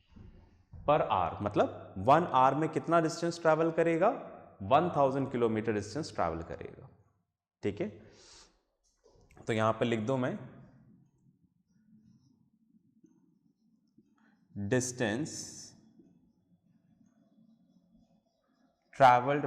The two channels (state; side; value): identical; both; correlation 1.00